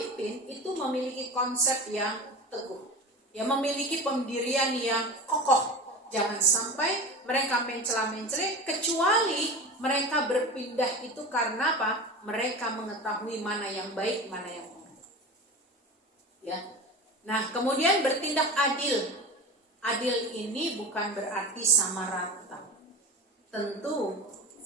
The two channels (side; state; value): both; normal; correlation 0.31